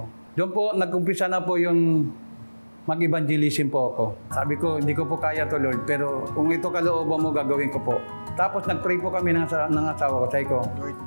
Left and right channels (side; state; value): both; inverted; correlation -1.00